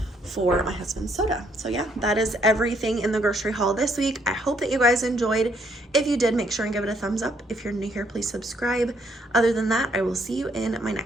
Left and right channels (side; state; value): both; normal; correlation 0.70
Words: for my husband's soda. So yeah, that is everything in the grocery haul this week. I hope that you guys enjoyed. If you did, make sure and give it a thumbs up. If you're new here, please subscribe. Other than that, I will see you in my